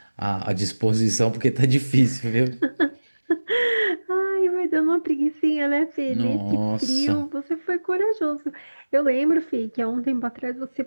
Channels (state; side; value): inverted; both; correlation -1.00